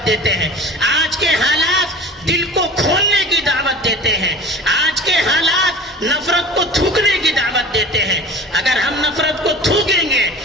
دیتے ہیں. آج کے حالات دل کو کھولنے کی دعوت دیتے ہیں. آج کے حالات نفرت کو تھوکنے کی دعوت دیتے ہیں. اگر ہم نفرت کو تھوکیں گے,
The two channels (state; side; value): normal; both; correlation 0.38